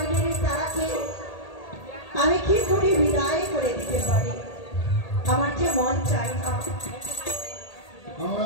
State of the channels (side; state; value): right; late; 1.8 ms